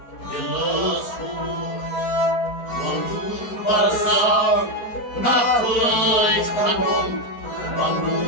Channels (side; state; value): right; late; 4.4 ms